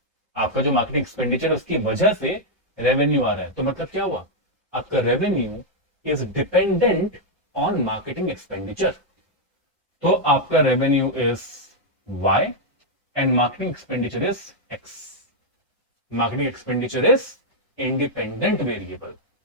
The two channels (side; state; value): both; normal; correlation -0.02